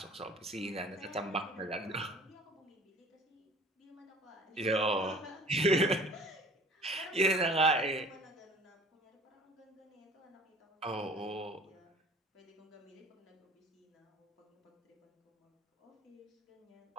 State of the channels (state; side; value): normal; both; correlation 0.48